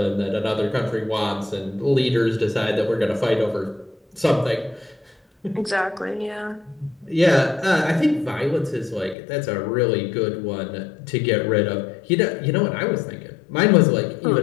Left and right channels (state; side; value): drops out; right; at 9.2 s